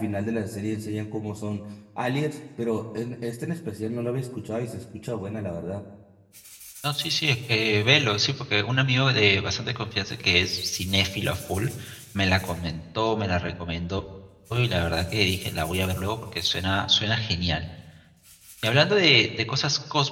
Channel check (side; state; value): both; identical; correlation 1.00